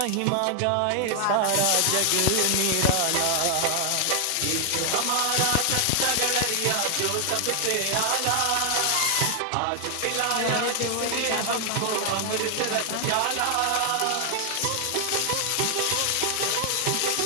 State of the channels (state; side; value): different; both; correlation 0.00